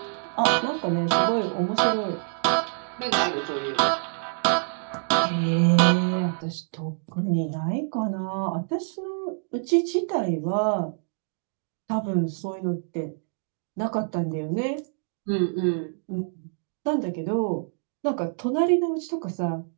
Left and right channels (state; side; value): silent; left; digital silence